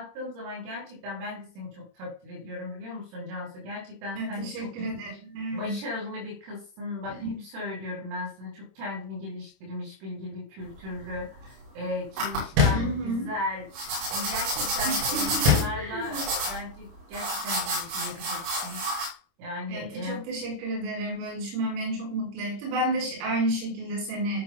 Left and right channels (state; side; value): late; left; 26 ms